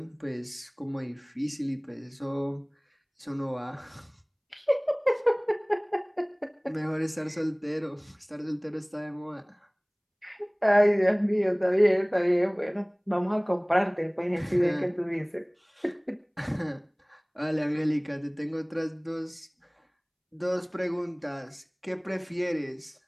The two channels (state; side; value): identical; both; correlation 1.00